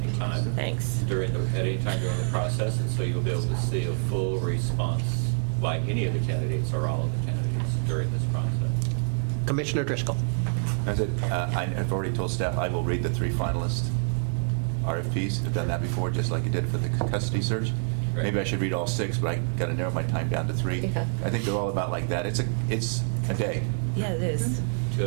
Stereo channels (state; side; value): silent; left; 60 dB below the other